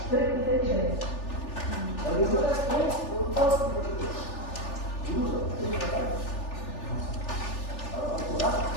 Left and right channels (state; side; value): late; right; 3.4 ms